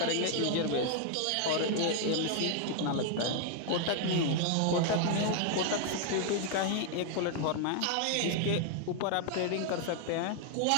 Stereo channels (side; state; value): both; different; correlation 0.00